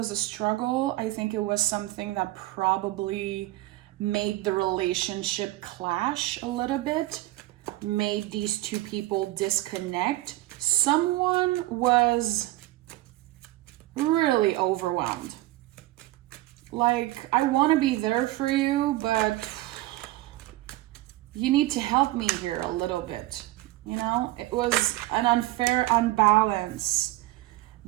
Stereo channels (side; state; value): left; quieter; 17.7 dB